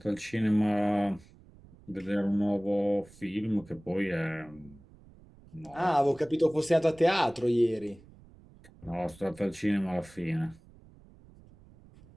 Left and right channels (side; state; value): right; noise; rumble, 24 dB below the sound